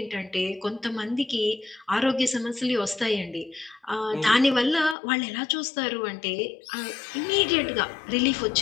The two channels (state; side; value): drops out; right; at 5.0 s